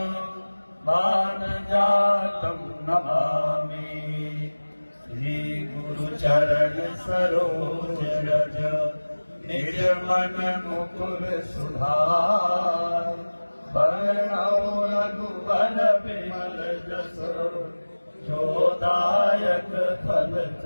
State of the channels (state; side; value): inverted; both; correlation -1.00